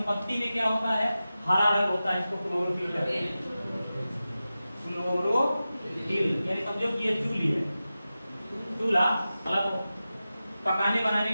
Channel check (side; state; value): both; inverted; correlation -0.94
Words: पत्ती में क्या होता है, हरा रंग होता है, इसको क्लोरोफिल कहते हैं, क्लोरोफिल। यानी समझो कि ये चूल्ही है, चूल्हा मतलब पकाने बनाने